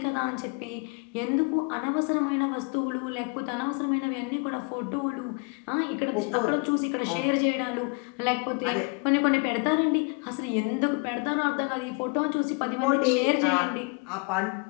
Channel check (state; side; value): quieter; right; 32.8 dB